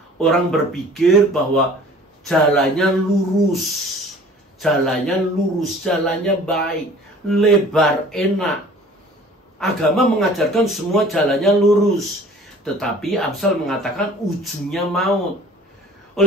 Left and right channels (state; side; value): normal; both; correlation 0.48